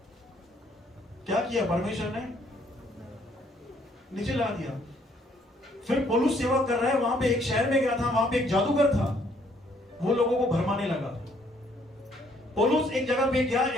क्या किया परमेश्वर ने? नीचे ला दिया। फिर पौलुस सेवा कर रहा है, वहां पे एक शहर में गया था, वहां पे एक जादूगर था, वो लोगों को भरमाने लगा। पौलुस एक जगह पे गया,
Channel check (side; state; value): both; normal; correlation 0.66